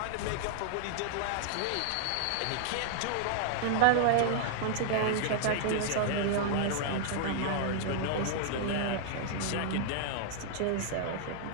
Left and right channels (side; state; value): both; different; correlation -0.01